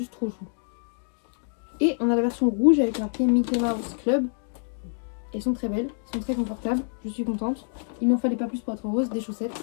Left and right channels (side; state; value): right; silent; digital silence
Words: trop chou. Et on a la version rouge avec marqué Mickey Mouse Club. Elles sont très belles, elles sont très confortables, je suis contente. Il m'en fallait pas plus pour être heureuse, des chaussettes.